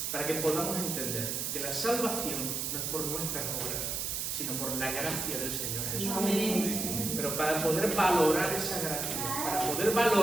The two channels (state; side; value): noise; right; hiss, 2 dB below the sound